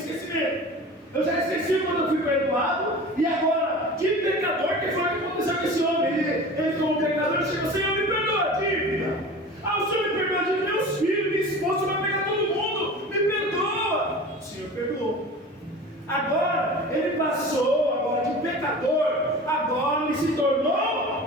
Eu já esqueci quando eu fui perdoado. E agora, que pecador, que foi o que aconteceu com esse homem? Ele como pecador, chegou: Senhor, me perdoa a dívida. O Senhor me perdoa a dívida, meus filhos, minha esposa, vai pegar todo mundo. Me perdoa. O Senhor perdoou. Agora, ele passou agora de pecador, agora ele se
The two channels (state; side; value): normal; both; correlation 0.36